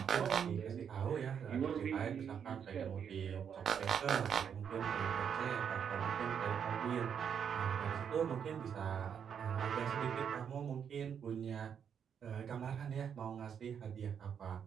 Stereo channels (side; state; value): left; quieter; 7.7 dB